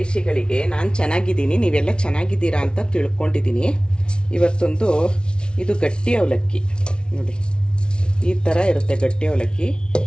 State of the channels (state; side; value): late; right; 0.056 ms